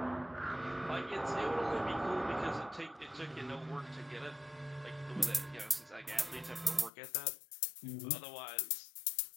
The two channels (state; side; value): drops out; right; at 6.9 s